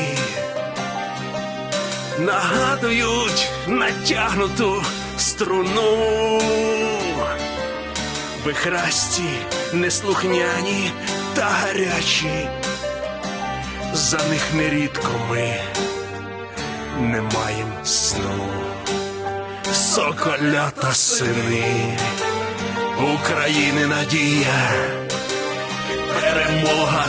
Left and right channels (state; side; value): identical; both; correlation 1.00